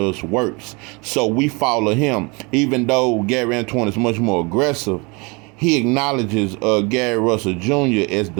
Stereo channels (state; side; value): quieter; left; 28.5 dB